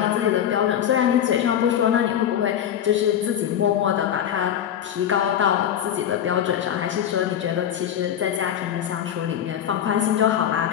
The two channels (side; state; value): right; quieter; 9.9 dB